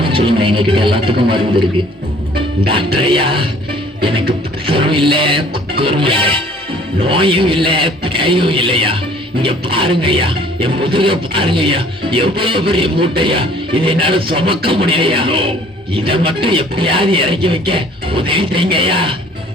சொல்லுங்க, எங்ககிட்ட எல்லாத்துக்கும் மருந்து இருக்கு. டாக்டர் ஐயா, எனக்கு ப்ரெஷரும் இல்ல, குக்கரும் இல்ல, நோயும் இல்ல, பேயும் இல்லையா. இங்க பாருங்க ஐயா, என் முதுக பாருங்க ஐயா, எவ்வளவு பெரிய மூட்டையா, இதை என்னால சுமக்க முடியலையா. இதை மட்டும் எப்படியாவது இறக்கி வைக்க உதவி செய்யுங்க ஐயா.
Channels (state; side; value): normal; both; correlation 0.55